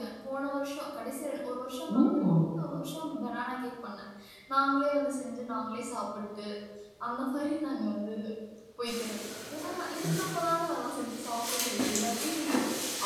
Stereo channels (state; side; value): identical; both; correlation 1.00